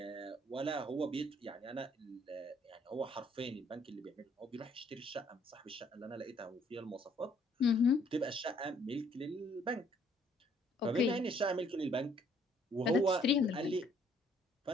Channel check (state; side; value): normal; both; correlation 0.64